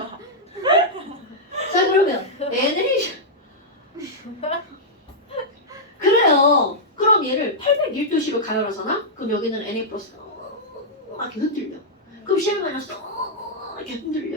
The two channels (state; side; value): normal; both; correlation -0.08